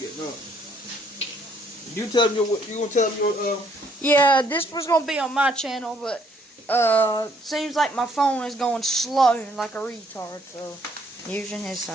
get done. You tell them you gonna tell them your Yeah, this was gonna be on my channel, but seems like my phone is going slow like a retard, so using his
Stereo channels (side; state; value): both; normal; correlation 0.66